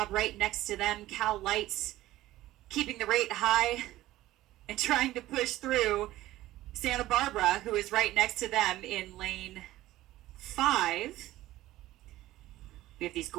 right next to them. Cal Lights keeping the rate high and trying to push through Santa Barbara, who is right next to them in Lane 5. We have these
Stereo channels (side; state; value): left; quieter; 15.8 dB